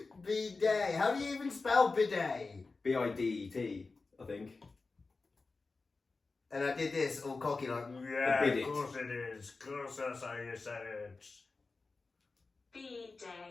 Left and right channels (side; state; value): right; quieter; 3.9 dB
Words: Bidet. How do you even spell bidet? B-I-D-E-T, I think. And I did this all cocky like, Yeah, bidet. of course it is. Of course that's how you say it.